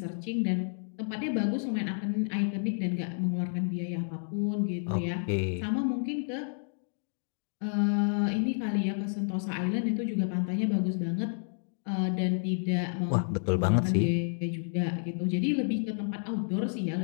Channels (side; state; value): right; silent; digital silence